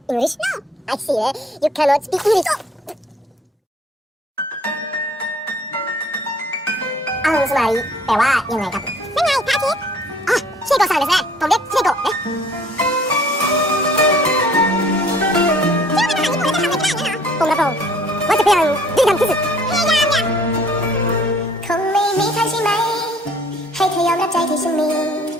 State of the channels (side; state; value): both; normal; correlation 0.56